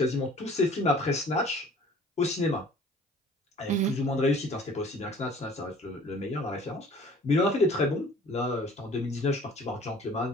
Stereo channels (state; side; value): normal; both; correlation 0.50